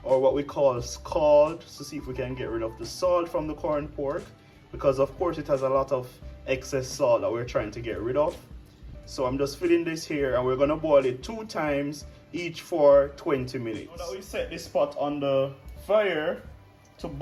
or what we call scald, to see if we can get rid of the salt from the corned pork, because of course it has a lot of excess salt that we're trying to get rid of. So I'm just filling this here and we're gonna boil it 2 times, each for 20 minutes. Now that we set this pot on the fire to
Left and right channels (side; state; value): both; identical; correlation 1.00